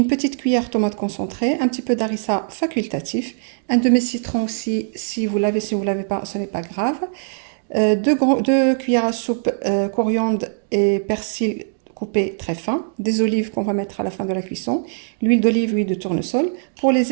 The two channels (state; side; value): silent; left; digital silence